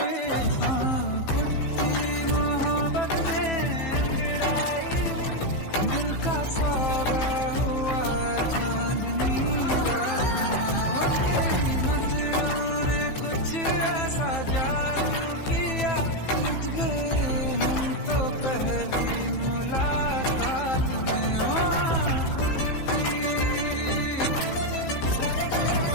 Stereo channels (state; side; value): late; right; 15 ms